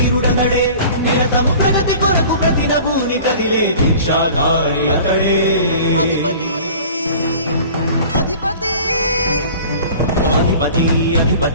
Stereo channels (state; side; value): inverted; both; correlation -0.44